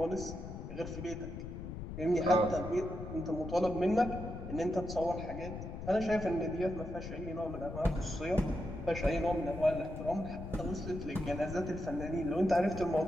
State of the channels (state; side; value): noise; left; rumble, 8 dB below the sound